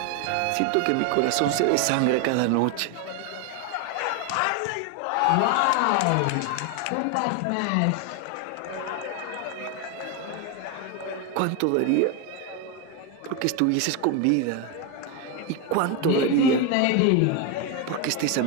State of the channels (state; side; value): different; both; correlation 0.02